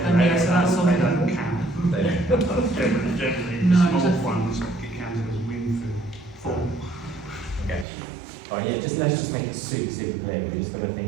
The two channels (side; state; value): left; drops out; at 7.9 s